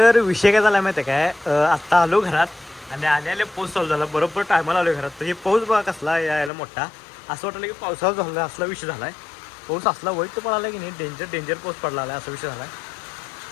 विषय काय झाला माहिती आहे काय, आत्ता आलो घरात आणि आले पाऊस चालू झाला. बरोबर टायमाला आलो घरात. तर हे पाऊस बघा कसला यायला मोठा. असं वाटलं की पावसाळा झाला असला विषय झाला आहे. पाऊस असला वाईट पडायला की नाही, डेंजर पाऊस पडला आहे असा विषय झाला आहे.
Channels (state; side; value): drops out; right; at 6.5 s